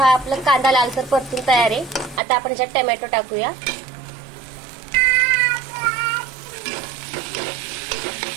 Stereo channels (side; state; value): left; drops out; at 2.2 s